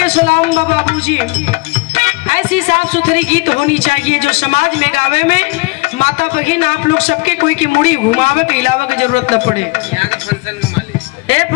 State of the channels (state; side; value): quieter; right; 26.0 dB